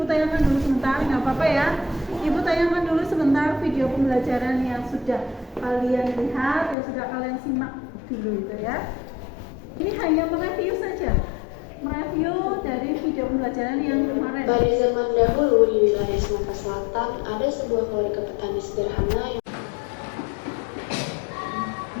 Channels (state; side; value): drops out; right; at 6.8 s